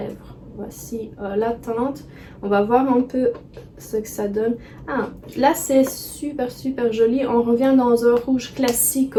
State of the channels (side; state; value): both; identical; correlation 1.00